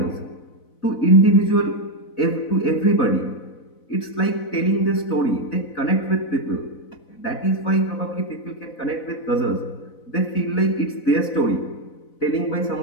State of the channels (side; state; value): right; late; 4.0 ms